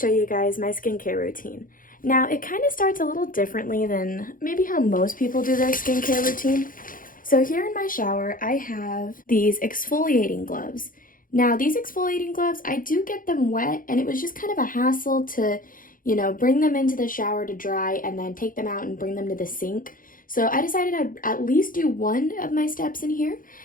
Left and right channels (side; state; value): right; late; 0.40 ms